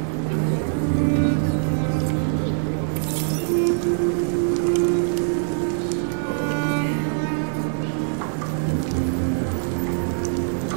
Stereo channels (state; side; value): silent; left; 55 dB below the other